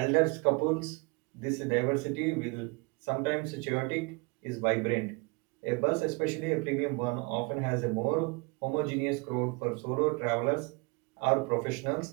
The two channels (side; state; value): left; quieter; 29.2 dB